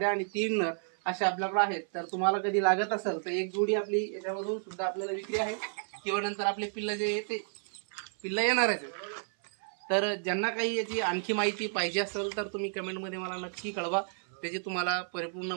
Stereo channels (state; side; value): silent; left; 57 dB below the other